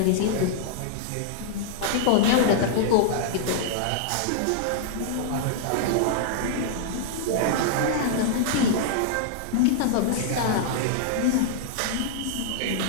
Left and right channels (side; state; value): both; different; correlation -0.01